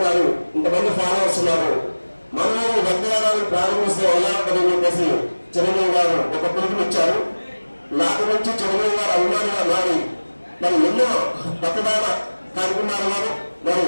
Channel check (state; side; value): inverted; both; correlation -1.00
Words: ఇంతమంది ఫాలోవర్స్ ఉన్నారు, మనలో రక్తదానాన్ని ప్రారంభిస్తే ఎలా ఉంటుందని చెప్పేసి చిరంజీవి గారు ఒక పిలుపునిచ్చారు. నాటి నుంచి చిరంజీవి గారు అభిమానిగా మారి మరి ఎన్నో రక్తదాన కార్యక్రమాలు మరి